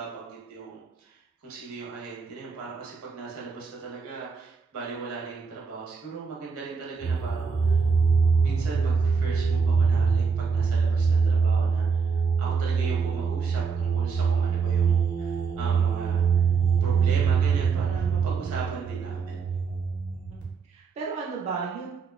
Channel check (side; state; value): left; quieter; 5.5 dB